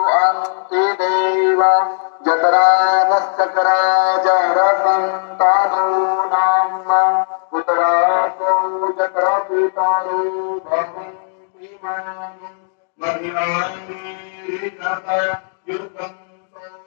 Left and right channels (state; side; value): silent; right; digital silence